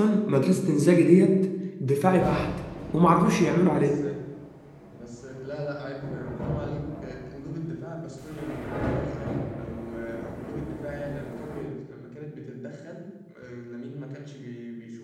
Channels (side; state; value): both; identical; correlation 1.00